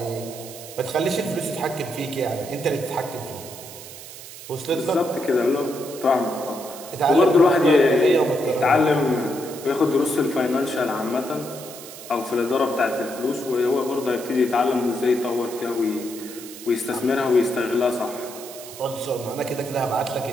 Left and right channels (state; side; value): noise; right; hiss, 14 dB below the sound